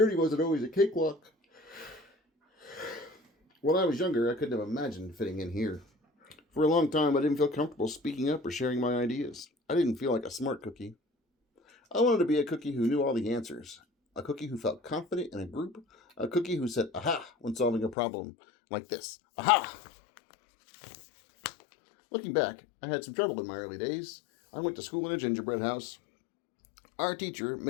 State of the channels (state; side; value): drops out; right; at 17.9 s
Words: wasn't always a cakewalk. When I was younger, I couldn't have imagined fitting in here. For a long time, I didn't feel comfortable speaking up or sharing my ideas. I didn't feel like a smart cookie. I wanted to be a cookie who knew all the answers, a cookie who felt confident in a group, a cookie who said, aha, when solving a problem like this. Aha! Looking back, I had some trouble in my early days. I went to school in a gingerbread house. Our teacher,